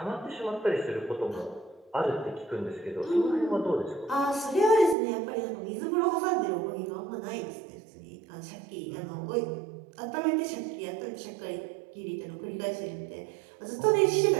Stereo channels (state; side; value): drops out; left; at 5.0 s